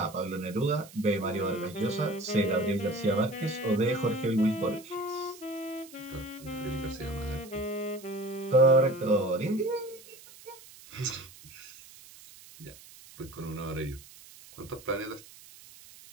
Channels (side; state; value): right; noise; hiss, 20 dB below the sound